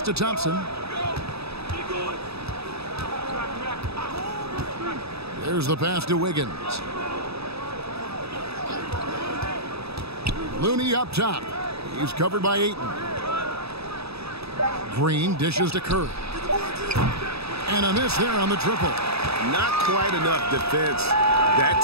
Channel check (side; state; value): left; late; 0.78 ms